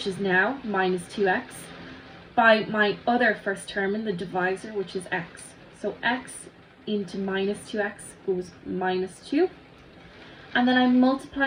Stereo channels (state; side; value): identical; both; correlation 1.00